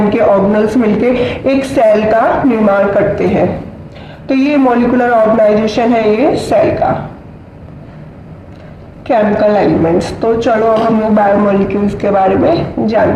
ऑर्गेनल्स मिलके एक सेल का निर्माण करते हैं। तो ये मॉलिक्यूलर ऑर्गेनाइजेशन है ये सेल का। केमिकल एलिमेंट्स, तो चलो अब हम लोग बायोमोलिक्यूल्स के बारे में जान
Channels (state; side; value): identical; both; correlation 1.00